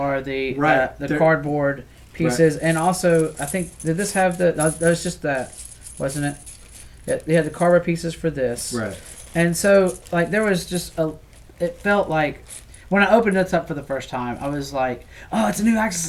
the cardboard pieces, and also I think did this have that was just that, wasn't it? Yeah, they had the cardboard pieces for this, right? And so like there was just it felt like when I opened this up for the first time, I was like, oh, it's a new Axis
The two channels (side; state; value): both; identical; correlation 1.00